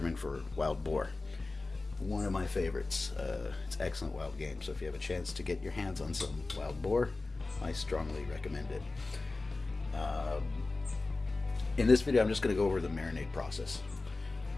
for wild boar. One of my favorites. It's excellent wild game, so if you have a chance to get your hands on some wild boar, I strongly recommend it. In this video, I'm just going to go over the marinade process.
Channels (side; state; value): right; quieter; 3.4 dB